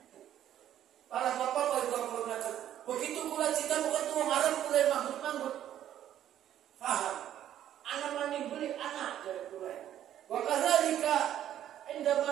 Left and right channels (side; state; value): left; quieter; 11.3 dB